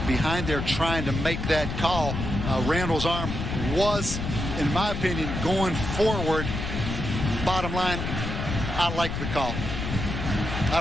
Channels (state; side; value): noise; left; rumble, 4 dB below the sound